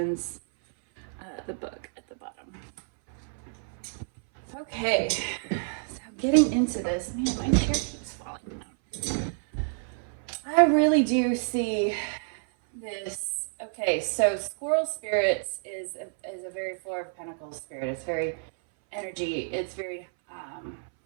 the book at the bottom. Okay. So getting into this, man, my chair keeps falling down. I really do see this. Okay, so Squirrel Spirits is a very Four of Pentacles spirit. It's very energy. It's very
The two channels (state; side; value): silent; left; 59 dB below the other